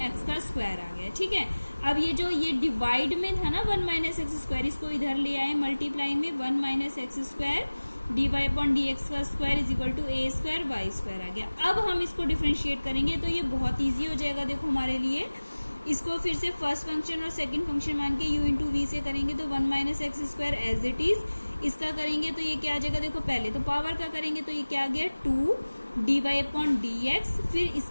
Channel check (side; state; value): both; inverted; correlation -1.00